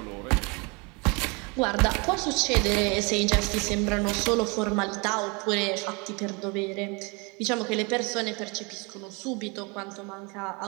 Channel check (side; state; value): left; quieter; 29.6 dB